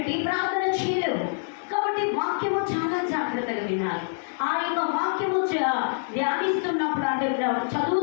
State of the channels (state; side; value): silent; right; digital silence